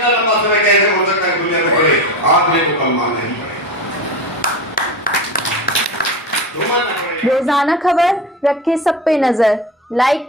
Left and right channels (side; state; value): both; normal; correlation 0.26